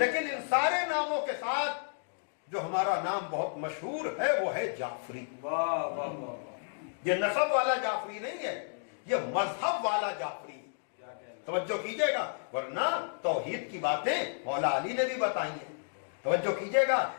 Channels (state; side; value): silent; right; digital silence